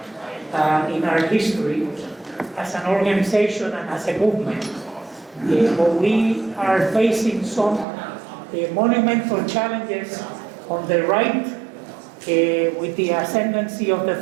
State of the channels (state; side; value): drops out; left; at 7.9 s